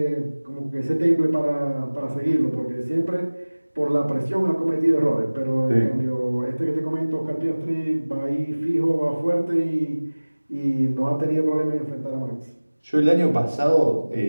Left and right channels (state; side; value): inverted; both; correlation -1.00